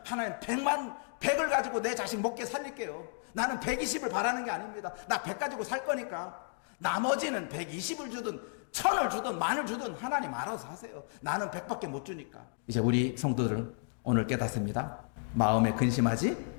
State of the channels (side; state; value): right; silent; digital silence